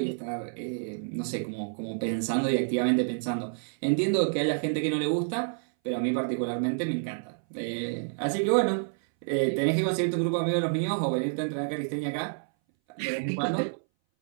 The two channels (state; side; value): silent; left; 59 dB below the other